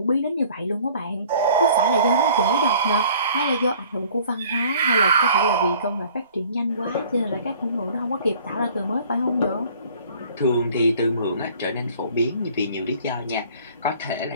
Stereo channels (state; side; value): inverted; both; correlation -0.52